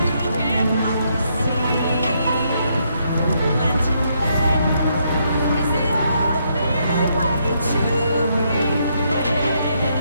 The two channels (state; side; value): inverted; both; correlation -0.75